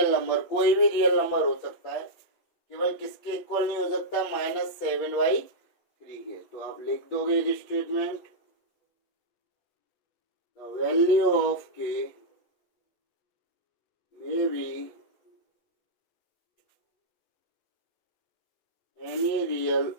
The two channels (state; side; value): late; right; 8.5 ms